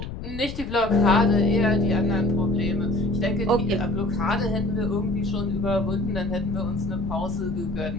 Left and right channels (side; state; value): left; noise; rumble, 9 dB below the sound